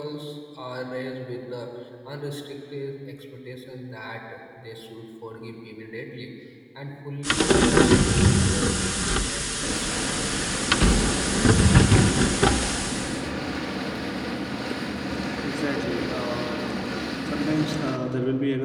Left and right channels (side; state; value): both; identical; correlation 1.00